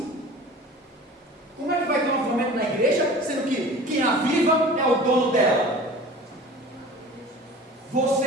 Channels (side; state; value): both; normal; correlation 0.40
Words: Como é que vai ter um avivamento na igreja, sendo que quem aviva é o dono dela?